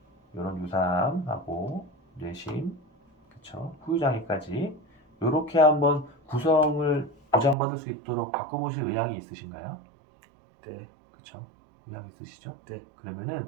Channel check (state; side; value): drops out; left; at 7.6 s